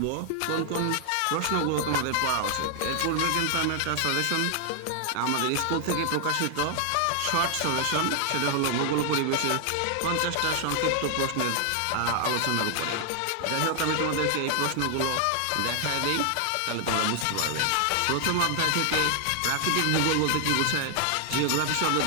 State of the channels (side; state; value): both; different; correlation 0.00